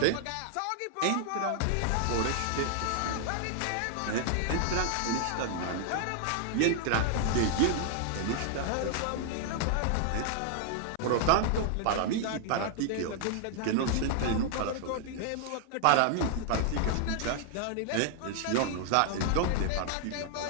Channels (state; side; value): different; both; correlation 0.00